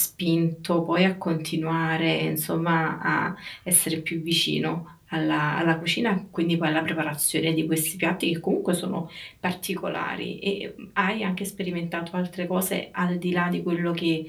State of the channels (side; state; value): both; identical; correlation 1.00